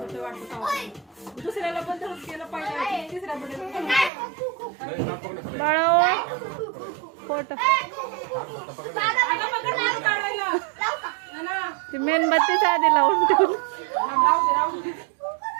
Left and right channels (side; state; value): left; drops out; at 4.1 s